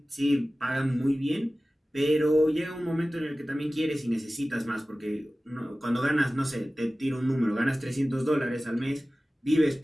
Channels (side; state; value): both; normal; correlation 0.96